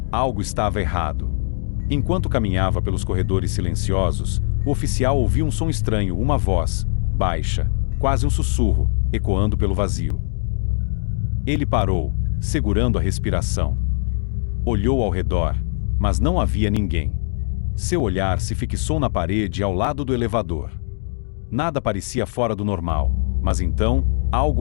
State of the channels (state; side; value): silent; right; digital silence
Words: Algo estava errado. Enquanto caminhava pelos corredores silenciosos, o oficial ouviu um som estranho, uma voz, baixa, quase um sussurro, ecoando pelo vazio. Ele parou, segurando a respiração. Olhou ao redor, mas não havia ninguém. Seu olhar se fixou na parede ao lado do elevador. Nada parecia fora do normal, mas então, algo